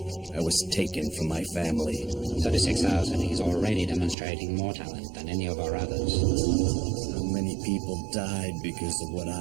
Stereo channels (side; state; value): left; drops out; at 4.2 s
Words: I was taken from my family. 36,000. He's already demonstrating more talent than any of our others. So many people died because of what